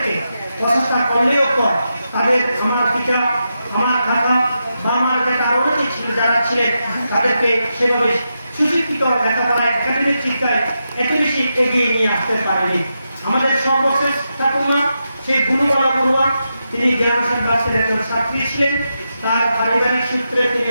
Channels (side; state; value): both; inverted; correlation -0.87